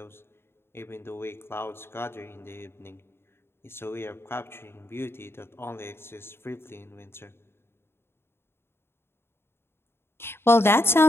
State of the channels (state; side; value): late; right; 0.11 ms